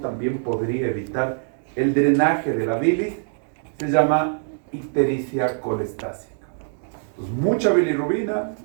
también podría evitar el drenaje de la bilis, se llama ictericia colestásica. Entonces, mucha bilirrubina,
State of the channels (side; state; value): left; silent; digital silence